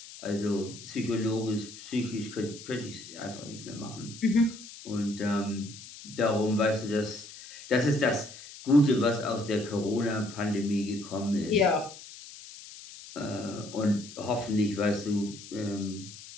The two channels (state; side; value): noise; left; hiss, 15 dB below the sound